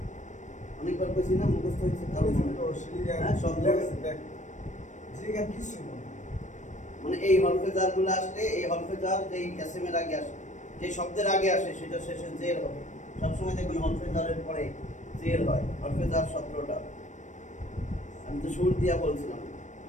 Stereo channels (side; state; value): right; late; 0.35 ms